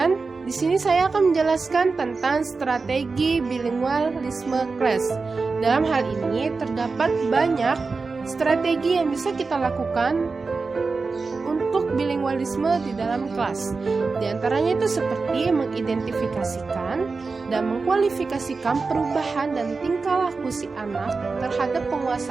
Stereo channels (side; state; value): left; quieter; 4.3 dB